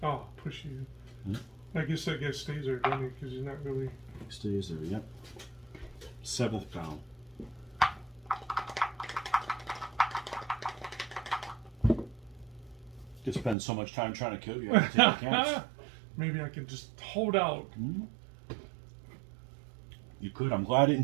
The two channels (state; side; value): drops out; left; at 13.6 s